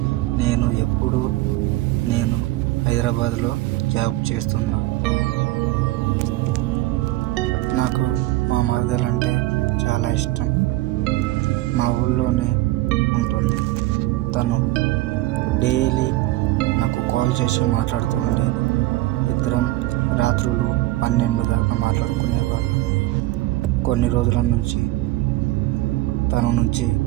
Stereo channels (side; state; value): left; quieter; 18.0 dB